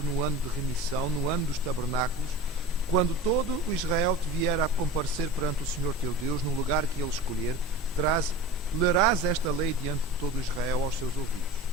no ano de remissão, no ano dos tabernáculos, quando todo o Israel te vier a comparecer perante o Senhor teu Deus, no lugar que ele escolher, lerás esta lei diante de todo o Israel aos seus ouvidos.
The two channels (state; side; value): normal; both; correlation 0.34